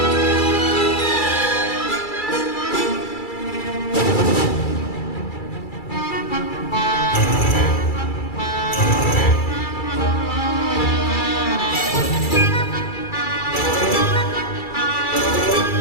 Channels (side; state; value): right; late; 2.3 ms